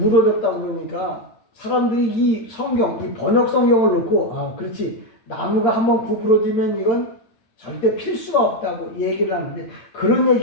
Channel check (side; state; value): right; late; 8.8 ms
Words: 그러니까 사람들이 이 성경, 이 번역 성경을 놓고 아 그렇지 나무가 한번 구부러지면 이건 절대 필 수가 없다고 얘기를 하는데, 그런